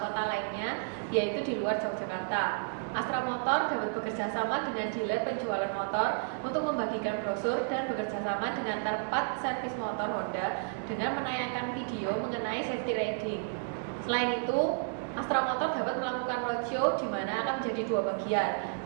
lainnya, yaitu di luar Yogyakarta. Astra Motor dapat bekerja sama dengan dealer penjualan motor untuk membagikan brosur dan bekerja sama dengan tempat servis motor Honda dengan menayangkan video mengenai safety riding. Selain itu, Astra Motor dapat melakukan roadshow di mana akan menjadi dua bagian.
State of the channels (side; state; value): left; silent; 57 dB below the other